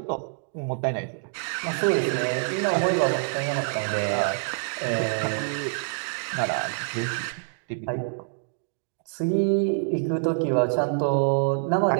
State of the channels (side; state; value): left; silent; digital silence